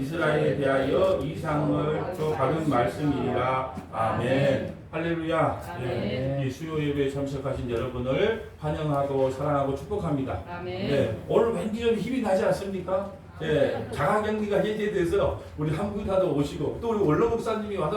대하여 이상을 받은 말씀이라. 아멘. 할렐루야. 네, 이 수요 예배에 참석하신 여러분을 환영하고 사랑하고 축복합니다. 아멘. 네, 오늘 왠지 좀 힘이 나지 않습니까? 예, 자가격리가 해제돼서 우리 한국인도 오시고 또 우리 원로 목사님이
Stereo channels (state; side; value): identical; both; correlation 1.00